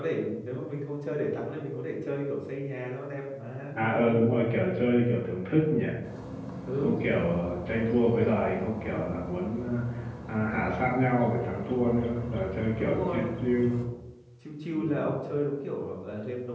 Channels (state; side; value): identical; both; correlation 1.00